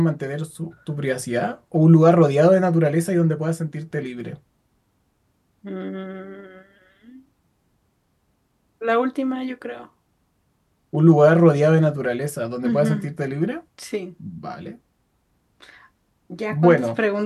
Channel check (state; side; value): identical; both; correlation 1.00